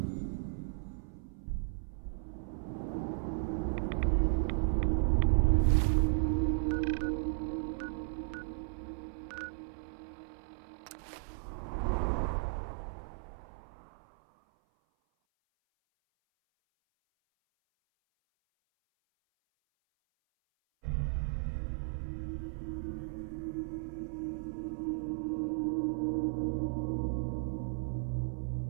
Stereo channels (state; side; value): silent; left; 54 dB below the other